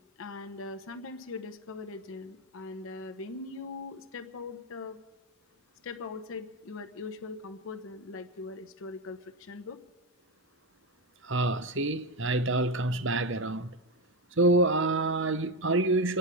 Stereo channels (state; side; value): normal; both; correlation 0.12